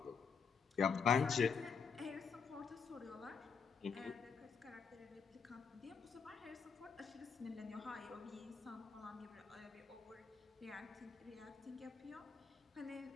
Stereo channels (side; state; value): right; quieter; 6.0 dB